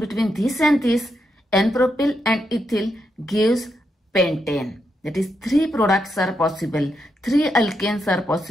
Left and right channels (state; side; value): normal; both; correlation 0.82